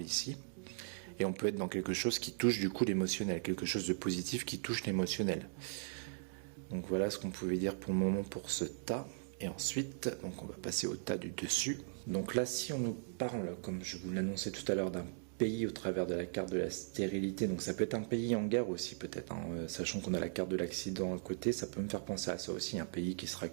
ici. Et on peut être dans quelque chose qui touche du coup l'émotionnel, quelque chose de positif qui touche l'émotionnel. Donc voilà ce qu'on pouvait dire pour le moment pour ce tas. Et ensuite, donc on va passer au tas du dessus. Donc là, si on nous parle, comme je vous l'annonçais tout à l'heure, d'un pays au travers de la carte de la stérilité. Donc ça peut être un pays en guerre aussi peut-être, hein. Sachant qu'on a la carte de l'accident à côté, ça peut me faire penser à ça aussi, un pays qui sera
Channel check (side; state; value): left; silent; digital silence